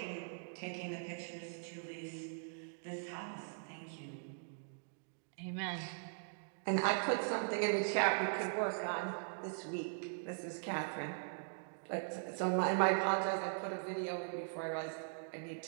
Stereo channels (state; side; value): silent; left; digital silence